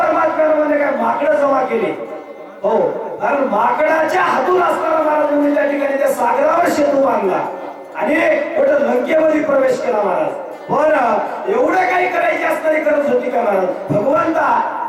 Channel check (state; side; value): identical; both; correlation 1.00